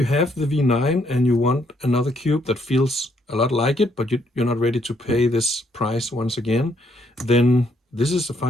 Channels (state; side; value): normal; both; correlation 0.71